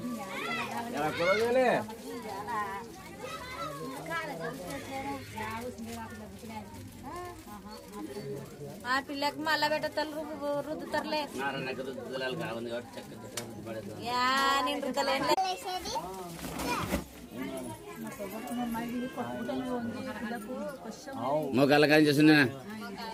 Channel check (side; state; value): both; identical; correlation 1.00